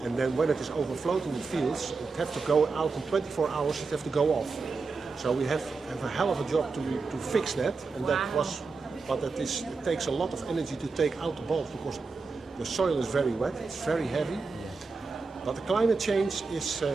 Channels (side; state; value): left; quieter; 4.4 dB